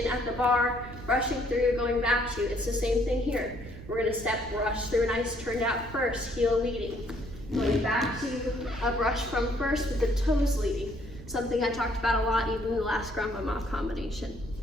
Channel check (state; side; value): noise; right; rumble, 14 dB below the sound